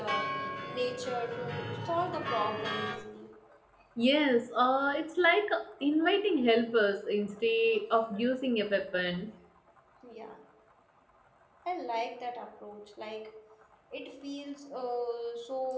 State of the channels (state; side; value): identical; both; correlation 1.00